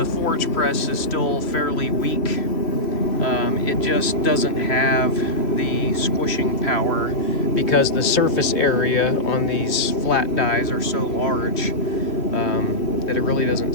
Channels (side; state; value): right; late; 3.0 ms